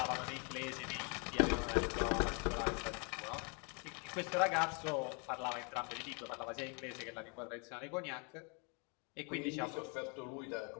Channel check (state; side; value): quieter; right; 34.9 dB